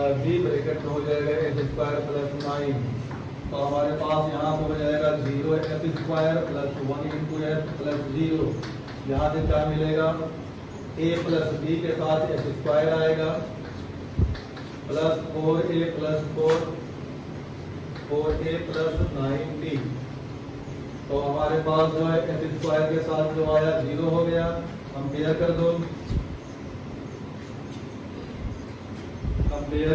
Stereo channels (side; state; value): both; identical; correlation 1.00